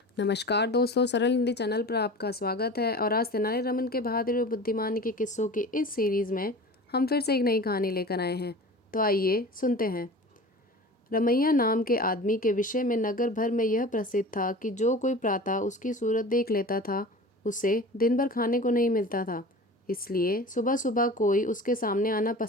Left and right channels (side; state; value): both; normal; correlation 0.37